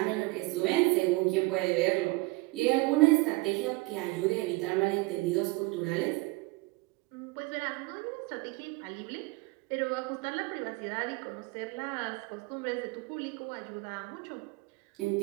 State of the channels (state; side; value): quieter; left; 24.2 dB